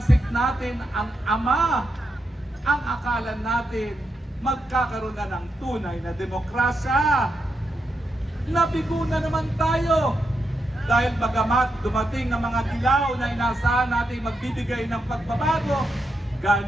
natin ang ama, ang akala natin magkakaroon na ng tunay na demokrasya. Nabigo na naman tayo dahil bagamat dumating ang mga dilaw na inaasahan natin magbibigay ng pagbabago,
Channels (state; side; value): normal; both; correlation 0.84